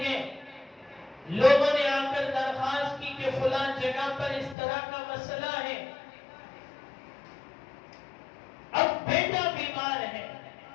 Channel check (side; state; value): right; drops out; at 4.5 s